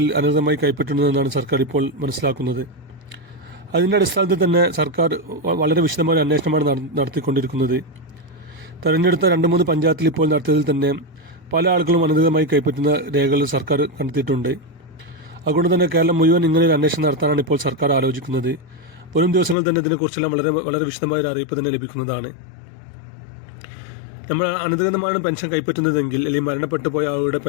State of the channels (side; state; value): right; drops out; at 19.6 s